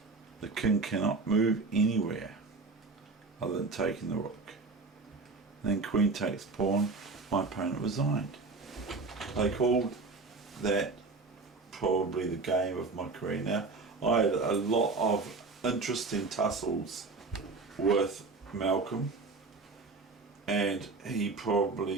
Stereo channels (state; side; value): quieter; left; 4.0 dB